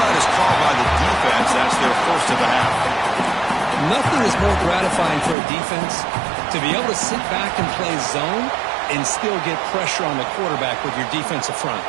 is called by the defense. That's their first of the half. Nothing is more gratifying for a defense to be able to sit back and play zone and still get pressure on the quarterback with your defensive front.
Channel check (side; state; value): left; drops out; at 5.4 s